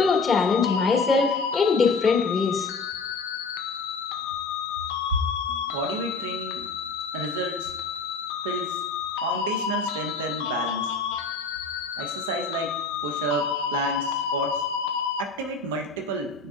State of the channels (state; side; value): quieter; right; 4.0 dB